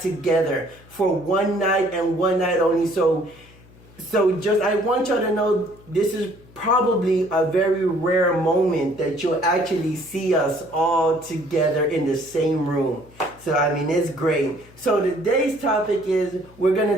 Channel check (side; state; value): left; noise; hum, 24 dB below the sound